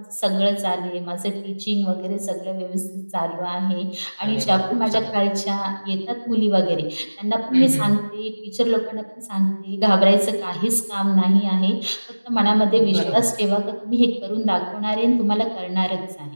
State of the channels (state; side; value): inverted; both; correlation -1.00